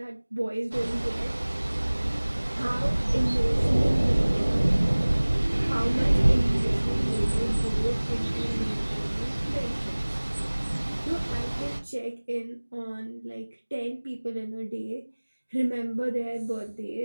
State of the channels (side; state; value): both; inverted; correlation -1.00